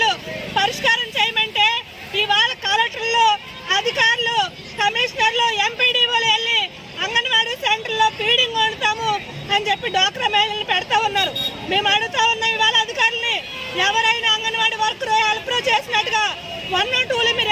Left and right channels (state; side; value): identical; both; correlation 1.00